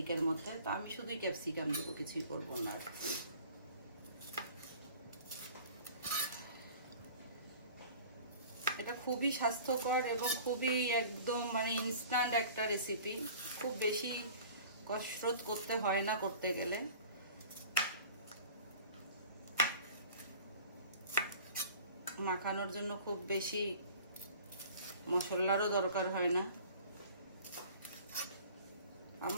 মধ্যে। তো আমি শুধুই ক্যাপসিকাম দেবো, কিছুই করবো না। এটা খুবই স্বাস্থ্যকর এবং খুবই একদম মানে ইনস্ট্যান্ট একটা রেসিপি। খুব বেশি কসরত করতে হয় না করতে গেলে। মাখানোর জন্য খুব বেশি মশলারও দরকার হয় না।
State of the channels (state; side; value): inverted; both; correlation -0.45